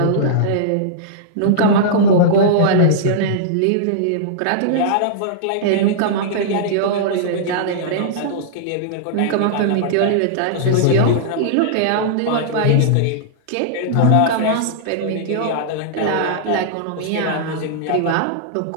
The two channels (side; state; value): both; different; correlation -0.02